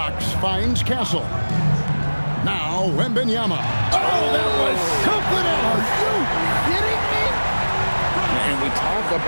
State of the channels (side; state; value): both; inverted; correlation -1.00